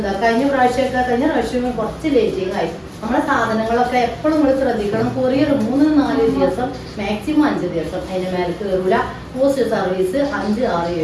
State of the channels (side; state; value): both; identical; correlation 1.00